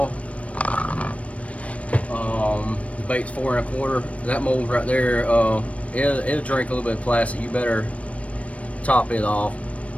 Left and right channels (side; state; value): right; late; 0.064 ms